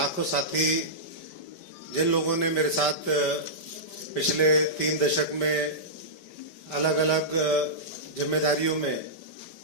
साथी जिन लोगों ने मेरे साथ पिछले 3 दशक में अलग अलग जिम्मेदारियों में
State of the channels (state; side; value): late; right; 5.1 ms